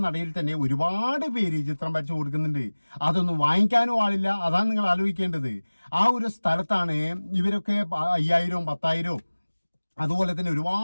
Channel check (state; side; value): inverted; both; correlation -1.00